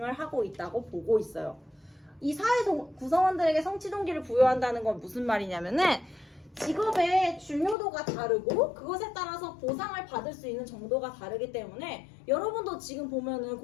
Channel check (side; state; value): right; drops out; at 7.8 s